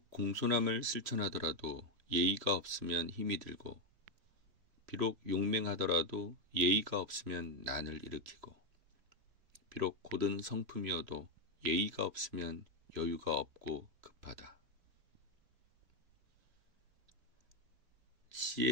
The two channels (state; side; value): late; left; 3.0 ms